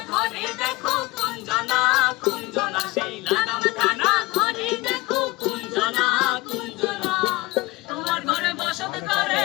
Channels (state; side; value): quieter; right; 21.3 dB